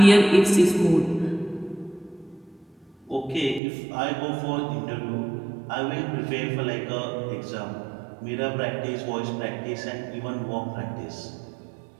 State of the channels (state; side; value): drops out; left; at 3.6 s